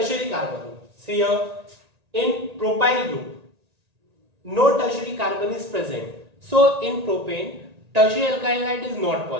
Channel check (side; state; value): left; late; 1.9 ms